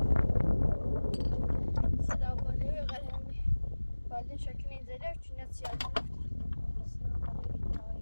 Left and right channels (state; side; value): inverted; both; correlation -1.00